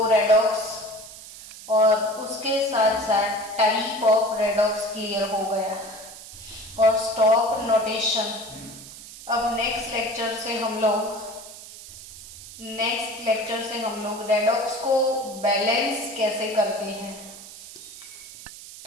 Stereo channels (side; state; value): right; noise; hiss, 15 dB below the sound